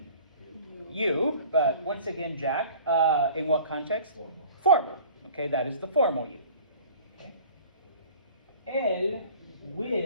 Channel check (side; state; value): both; inverted; correlation -0.45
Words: You, but once again, Jack, in what context? Formal. Okay, that is the formal you. Okay. El